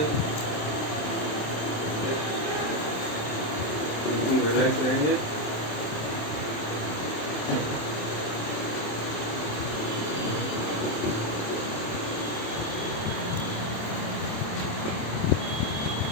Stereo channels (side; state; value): right; late; 27 ms